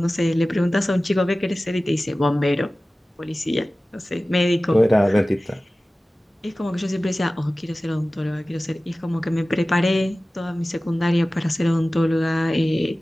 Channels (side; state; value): both; normal; correlation 0.97